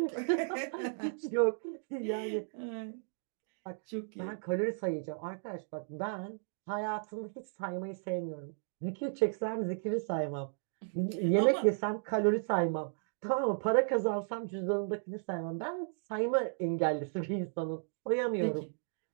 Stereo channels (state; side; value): silent; left; digital silence